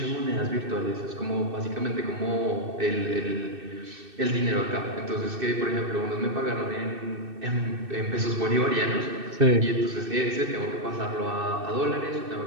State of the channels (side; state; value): left; late; 2.6 ms